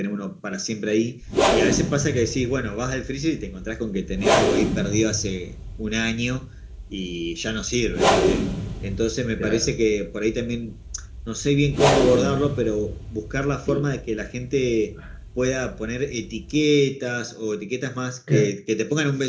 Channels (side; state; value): both; identical; correlation 1.00